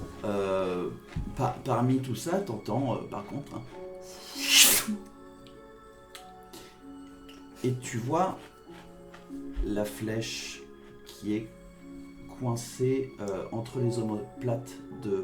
parmi tout ça, t'entends par contre. Et tu vois la flèche qui est coincée entre les omoplates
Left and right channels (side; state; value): both; identical; correlation 1.00